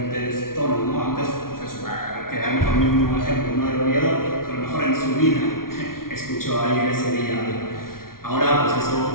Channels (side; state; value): right; late; 0.93 ms